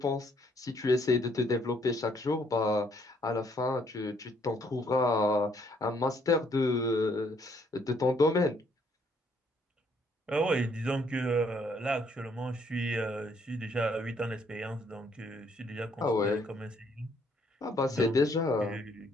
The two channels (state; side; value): normal; both; correlation 0.67